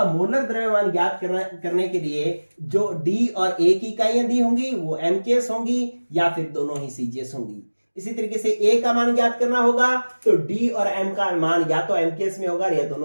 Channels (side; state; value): both; inverted; correlation -1.00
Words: मोलर द्रव्यमान ज्ञात करने के लिए जो डी और ए की इकाइयां दी होंगी वो एमकेएस होंगी या फिर दोनों ही सीजीएस होंगी। इसी तरीके से ए का मान ज्ञात करना होगा तो डी और एम का मान या तो एमकेएस में होगा या